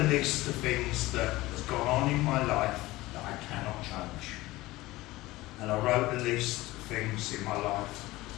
list of things that has gone on in my life that I cannot change. And I wrote a list of things in my life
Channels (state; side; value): quieter; right; 18.8 dB